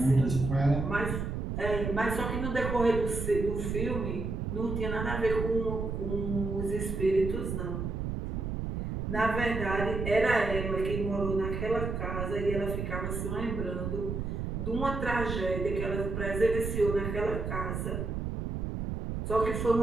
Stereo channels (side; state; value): right; noise; rumble, 3 dB below the sound